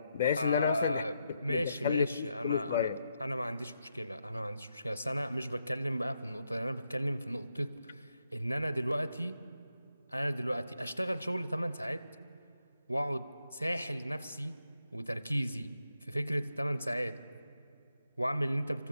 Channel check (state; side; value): inverted; both; correlation -0.82